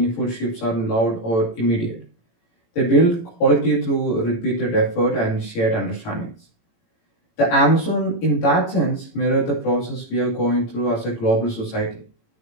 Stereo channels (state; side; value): late; right; 18 ms